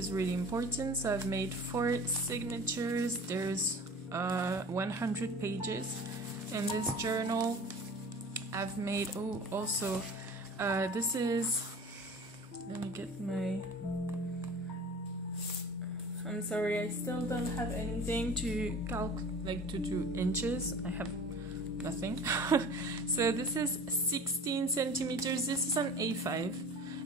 really important. So I've made 4 signatures. There's 100 pages in this journal. I've made, oh, also, this is, let me get my, I'm sorry, I still don't have anything to like to do inches. I have nothing. So this is 16 centimeters. This is an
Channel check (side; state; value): both; normal; correlation 0.41